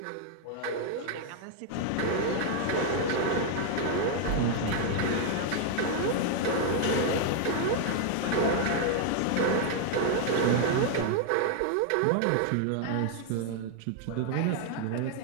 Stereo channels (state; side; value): different; both; correlation 0.00